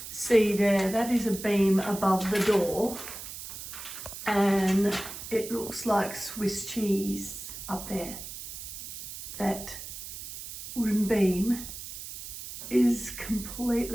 see there, that is a beam above the door, and it looks like Swiss cheese up there. That wooden beam is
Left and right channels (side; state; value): right; noise; hiss, 10 dB below the sound